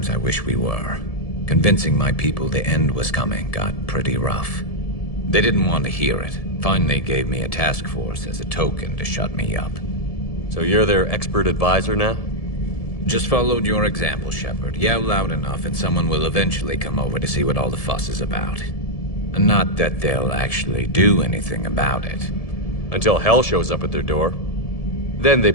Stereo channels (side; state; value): right; late; 1.7 ms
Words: I wish we were. Convincing my people the end was coming got pretty rough. They didn't want to hear it. Finally gave me a task force as a token to shut me up. So you're their expert advisor now? Just followed your example, Shepard. Yell loud enough and someone will eventually come over to see what all the fuss is about. Not that they'll actually do anything about it. Until hell shows up at their door. Then they